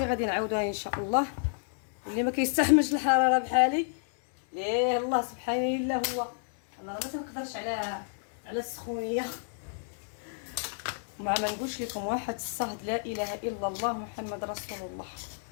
غادي نعاودوها ان شاء الله. اللي ما كيستحملش الحراره بحالي ليه الله سبحان الله، هو انا راه ما تنقدرش على السخونيه. ما نقولش لكم واحد الصهد لا اله الا الله محمد رسول الله.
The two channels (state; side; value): silent; right; digital silence